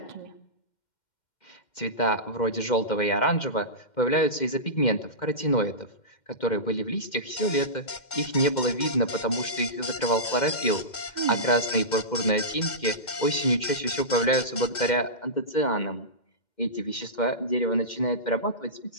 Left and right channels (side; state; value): right; late; 2.1 ms